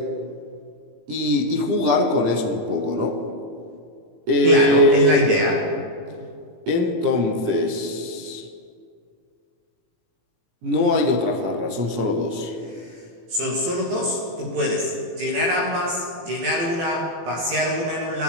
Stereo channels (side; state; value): left; late; 18 ms